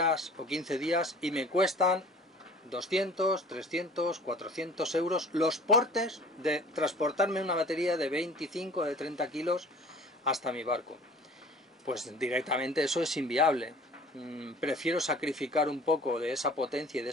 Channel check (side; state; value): both; normal; correlation 0.47